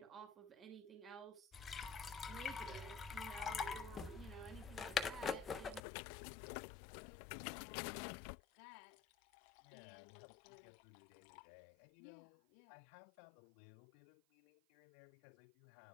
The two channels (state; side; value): drops out; right; at 5.8 s